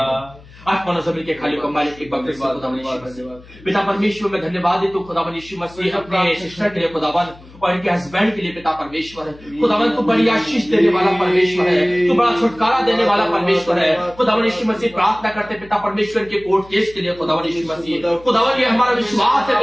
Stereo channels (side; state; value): left; noise; hum, 22 dB below the sound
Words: आत्मा जमीन के खाली को मालिक एक बार फिर से पिता परमेश्वर में धन्यवाद देता हूं खुदावन यीशु मसीह अपने सिस्टर के लिए खुदावन और इनके हस्बैंड के लिए पिता परमेश्वर है। खुदावन तू बड़ी आशीष देने वाला परमेश्वर है, तू बड़ा छुटकारा देने वाला परमेश्वर है। खुदावन यीशु मसीह प्रार्थना करते पिता परमेश्वर के कोर्ट केस के लिए खुदावन यीशु मसीह, खुदावन ये हमारा विश्वास है